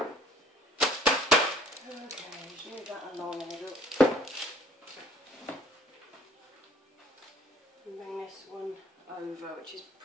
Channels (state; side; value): normal; both; correlation 0.55